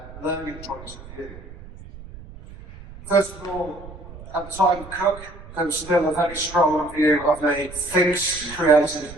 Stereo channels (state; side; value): noise; right; rumble, 16 dB below the sound